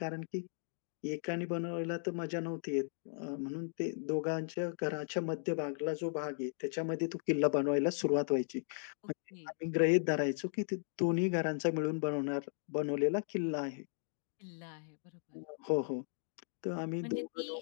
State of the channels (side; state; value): right; silent; digital silence